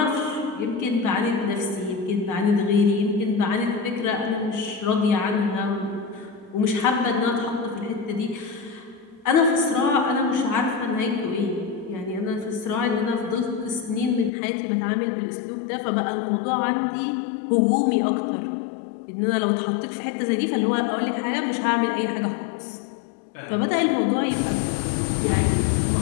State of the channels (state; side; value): drops out; right; at 14.3 s